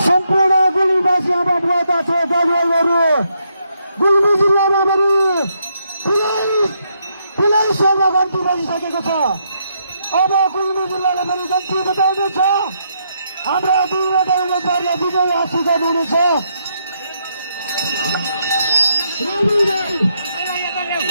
सम्पूर्ण गुल्मीवासी आमा बुवा दाजुभाइहरू गुल्मी जिल्लामा पनि ठुलै सेवा गन्ती बनिसकेको छ। अब गुल्मी जिल्लाले पनि गन्ती बताउनेछ। हाम्रा दुईवटा उम्मेदवारले विजय हासिल गर्नुहुनेछ।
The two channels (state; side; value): inverted; both; correlation -0.77